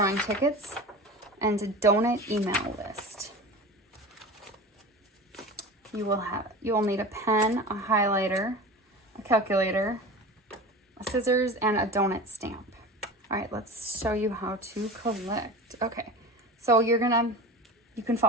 tickets and a donate email list. You will need a pen, a highlighter, a calculator, a scissors, and a donut stamp. All right, let's show you how to collect. Okay, so you can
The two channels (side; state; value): both; normal; correlation 0.32